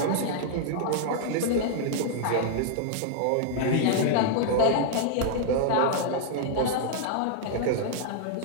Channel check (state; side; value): different; both; correlation -0.01